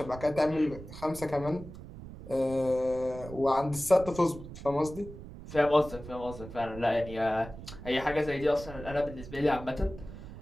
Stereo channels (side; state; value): right; noise; rumble, 13 dB below the sound